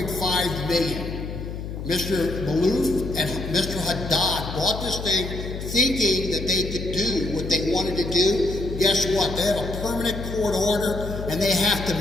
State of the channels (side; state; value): left; noise; hum, 7 dB below the sound